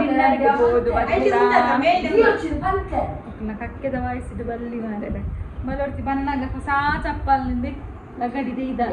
ಹೋದು ಕಕ್ಕೆದ ವಯಸ್ಸಿದ ಬಲ್ಲಿ ಮಾರೆ ಮಲರ್ತಿ ಬನ್ನಾಗ ಹೊಸ ಚಪ್ಪಲಿಂದ ಲಗಡಿದೆ ಇದ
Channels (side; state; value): both; identical; correlation 1.00